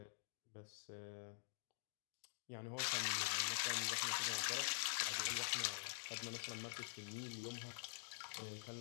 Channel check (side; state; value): right; silent; digital silence